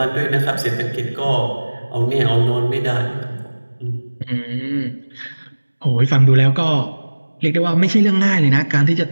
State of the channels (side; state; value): both; inverted; correlation -1.00